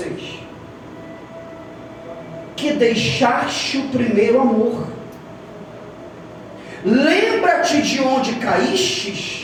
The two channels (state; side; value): identical; both; correlation 1.00